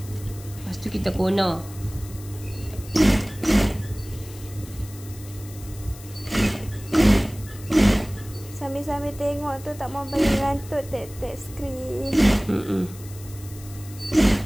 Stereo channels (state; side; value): noise; left; hiss, 18 dB below the sound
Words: tu kita kona. Sambil tengok tu tak mau bagi ngantuk tek skrin.